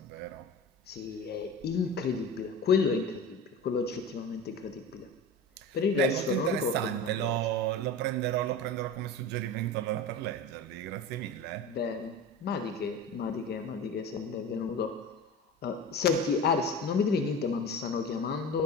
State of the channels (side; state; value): both; normal; correlation 0.31